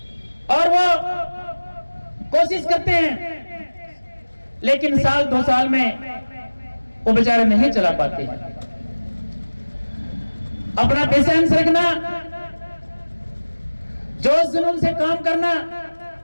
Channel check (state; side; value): inverted; both; correlation -1.00